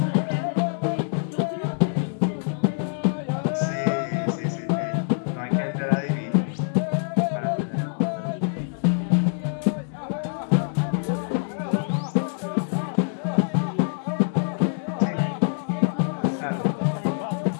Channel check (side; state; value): right; silent; digital silence